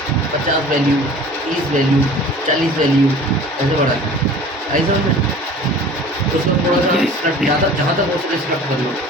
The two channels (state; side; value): normal; both; correlation 0.44